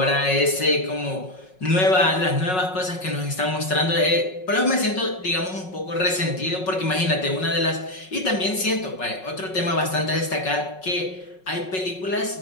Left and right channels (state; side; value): late; right; 5.4 ms